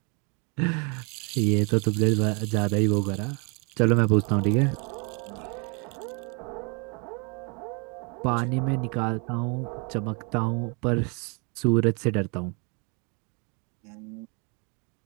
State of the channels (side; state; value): left; quieter; 34.0 dB